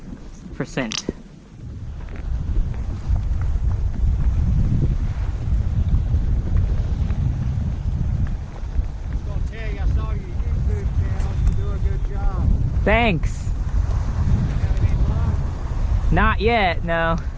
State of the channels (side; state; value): both; identical; correlation 1.00